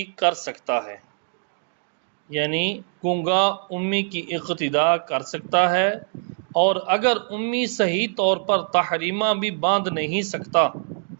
کر سکتا ہے، یعنی گونگا امی کی اقتدا کر سکتا ہے، اور اگر امی صحیح طور پر تحریمہ بھی باندھ نہیں سکتا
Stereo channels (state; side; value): silent; left; digital silence